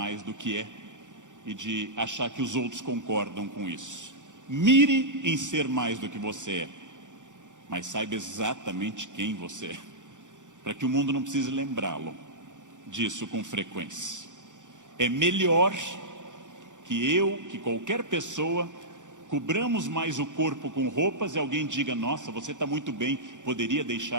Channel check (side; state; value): left; late; 0.86 ms